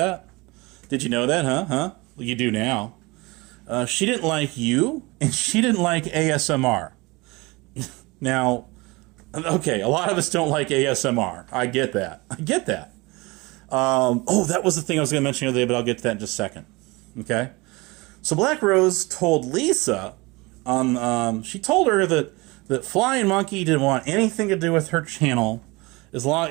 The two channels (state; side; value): quieter; left; 24.0 dB